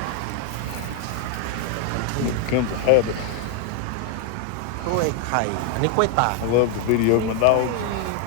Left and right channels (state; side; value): different; both; correlation 0.01